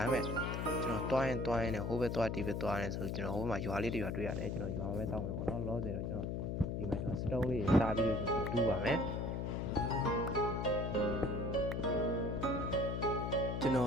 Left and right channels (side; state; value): left; noise; hum, 1 dB below the sound